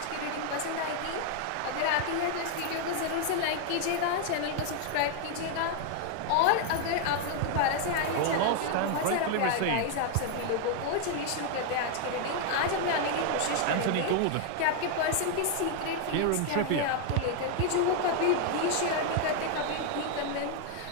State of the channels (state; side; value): different; both; correlation 0.00